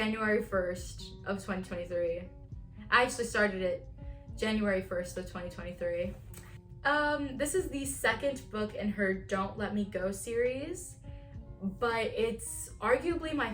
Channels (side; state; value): both; identical; correlation 1.00